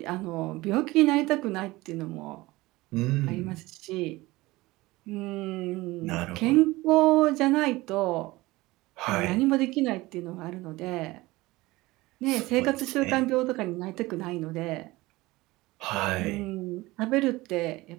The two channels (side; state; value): left; quieter; 20.1 dB